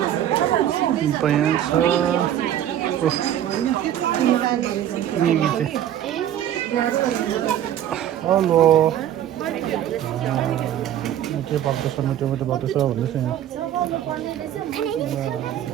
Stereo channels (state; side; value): quieter; left; 11.1 dB